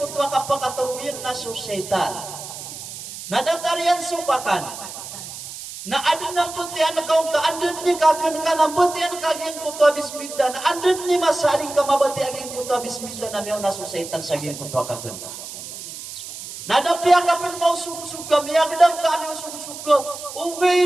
tuwa kapakatulungin na susaitan. Nadatarian supakan. Na adun ng butihan na kaong kaandun ni kagan ka ng butihan kaging kuto bismillah na andun ni masaling ka mabati aging kuto bismillah na miyaw nasusaitan sa aging kuto kagan ka. Nadapya ka pin mau suga miyagdang ka aming suga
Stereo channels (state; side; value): noise; right; hiss, 11 dB below the sound